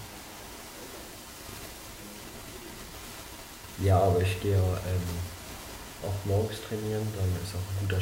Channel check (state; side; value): identical; both; correlation 1.00